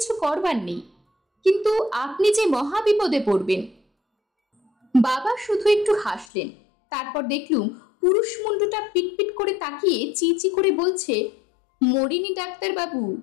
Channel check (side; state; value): right; drops out; at 6.2 s